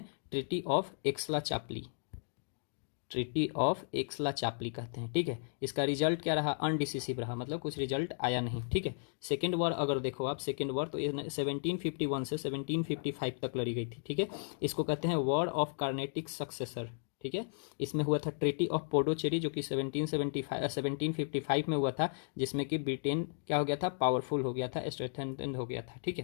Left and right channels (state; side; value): silent; right; digital silence